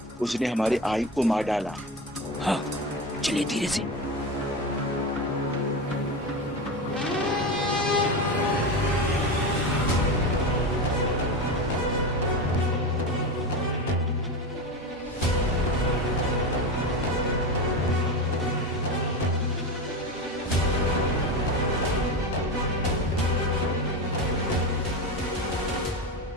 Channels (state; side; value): normal; both; correlation 0.21